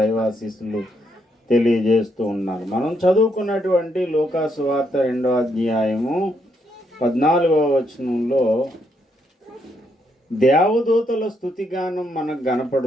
తెలియజేస్తూ ఉన్నాను. మనం చదువుకున్నటువంటి లూకా సువార్త 2వ అధ్యాయము 14వ వచనంలో దేవదూతల స్తుతిగానం మనకు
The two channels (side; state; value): both; normal; correlation 0.76